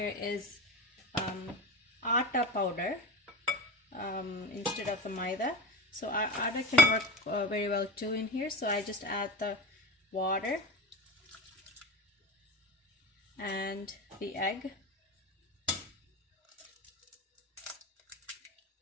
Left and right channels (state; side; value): normal; both; correlation 0.26